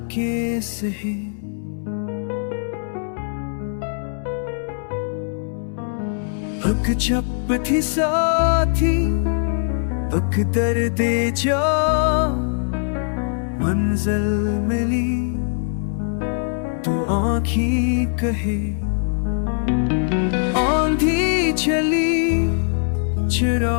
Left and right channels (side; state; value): right; silent; digital silence